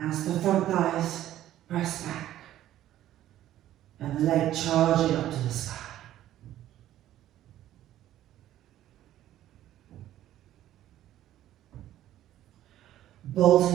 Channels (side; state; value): left; quieter; 13.0 dB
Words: the front thighs press back and the leg charging up to the sky.